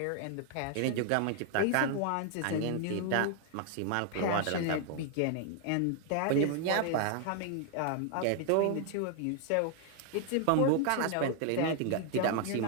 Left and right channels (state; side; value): different; both; correlation 0.00